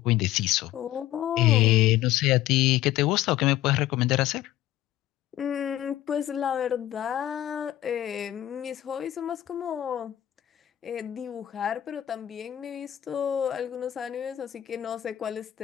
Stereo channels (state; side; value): quieter; right; 13.5 dB